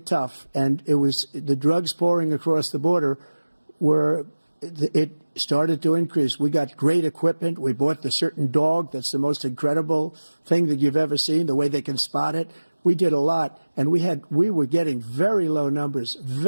tough. And it was the drugs pouring across the border it started to increase. We got great equipment. We bought the certain dog that's the most incredible thing that you've ever seen, the way they can spot it. We did a lot. And we were getting very low numbers,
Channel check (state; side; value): inverted; both; correlation -1.00